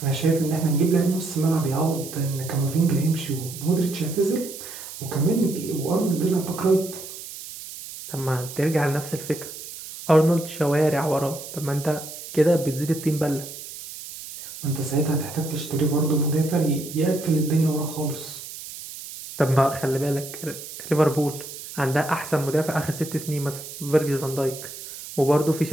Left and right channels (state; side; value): noise; right; hiss, 12 dB below the sound